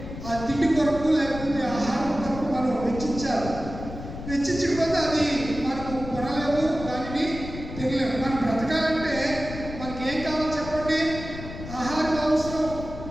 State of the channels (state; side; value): noise; left; rumble, 10 dB below the sound